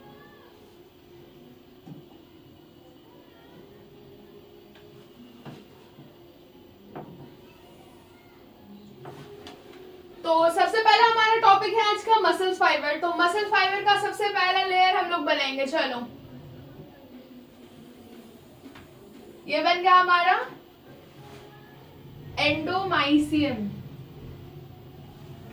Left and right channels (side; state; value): both; identical; correlation 1.00